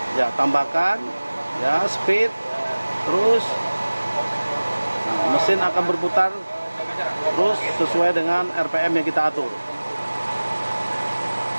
Ya, tambahkan ya speed, terus nah, mesin akan berputar terus sesuai dengan RPM yang kita atur.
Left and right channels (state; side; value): inverted; both; correlation -1.00